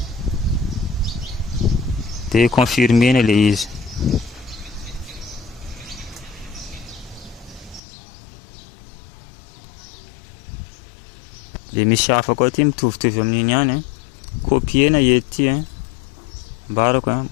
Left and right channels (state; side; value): drops out; right; at 7.8 s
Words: Dia confirmena le izy. Dia misy hafa koa ty mitovitovy amin'iny ihany copiena ety mbarako